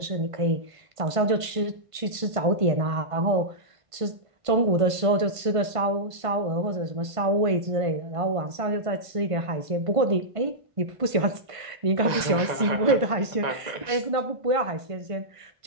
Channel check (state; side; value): late; left; 1.5 ms